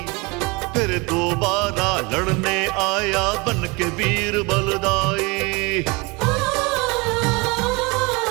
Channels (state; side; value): quieter; left; 26.9 dB